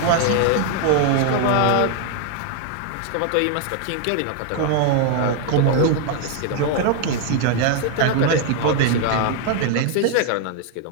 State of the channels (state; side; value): different; both; correlation 0.00